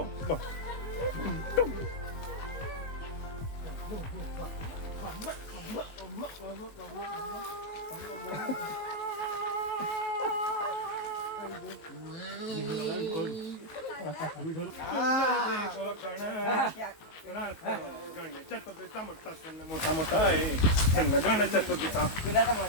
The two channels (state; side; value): late; right; 19 ms